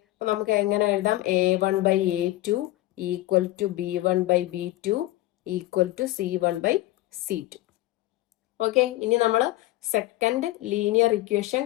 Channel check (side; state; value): right; quieter; 17.1 dB